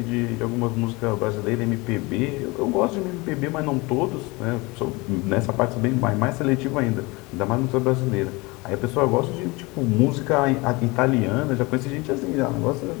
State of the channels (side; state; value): right; quieter; 24.6 dB